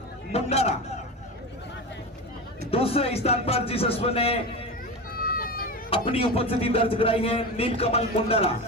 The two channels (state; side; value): normal; both; correlation 0.24